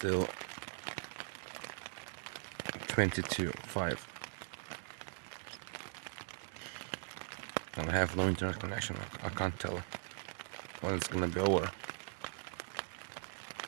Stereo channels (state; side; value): silent; left; digital silence